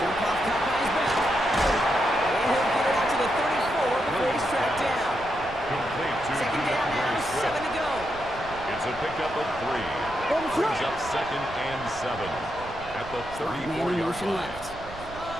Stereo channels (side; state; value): right; noise; rumble, 15 dB below the sound